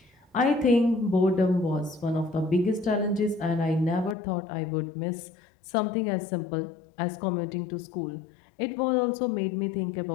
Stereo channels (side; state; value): right; drops out; at 4.2 s